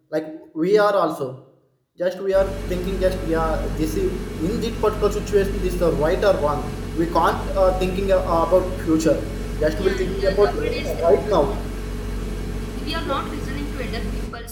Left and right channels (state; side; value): identical; both; correlation 1.00